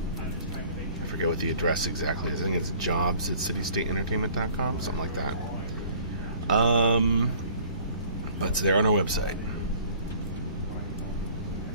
forget what the address exactly is. I think it's jobs@citystateentertainment.com, something like that. But it's there on our website.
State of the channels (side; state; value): both; inverted; correlation -0.52